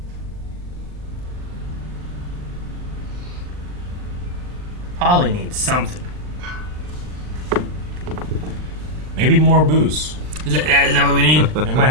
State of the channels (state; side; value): late; left; 39 ms